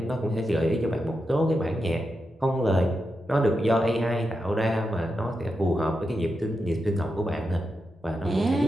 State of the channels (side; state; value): both; normal; correlation 0.87